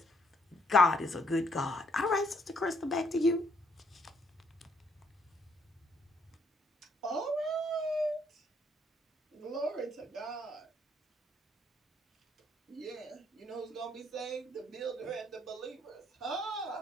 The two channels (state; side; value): normal; both; correlation 0.70